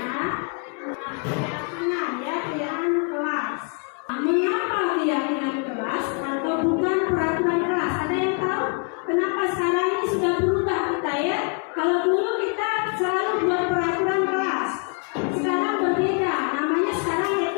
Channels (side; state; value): right; quieter; 37.3 dB